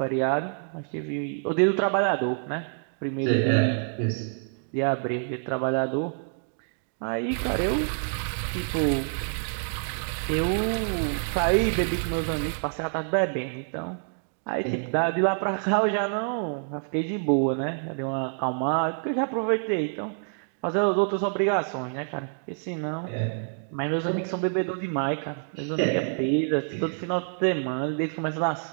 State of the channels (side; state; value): left; silent; digital silence